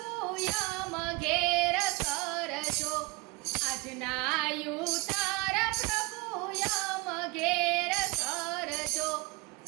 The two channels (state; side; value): quieter; left; 25.0 dB